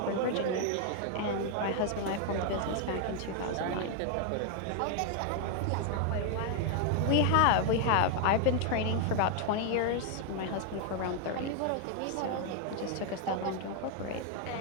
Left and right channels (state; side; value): different; both; correlation 0.00